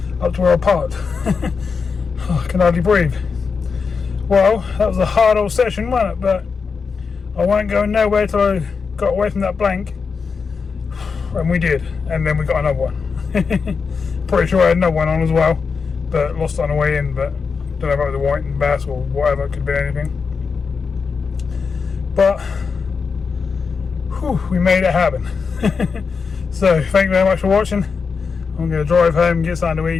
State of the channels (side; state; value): right; quieter; 5.3 dB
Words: up to where I parked. Oh, I can hardly breathe. Well, that was a hard old session, wasn't it? But I wasn't going nowhere till I got away from that blank. And we did. And then we got another one. Pretty sure I had another one on as well, but lost it on the way in. But don't know if it was a whiting bass or whatever, it could be anything. But whew, we made it happen. So thank you very much for watching. I'm going to drive home, get something to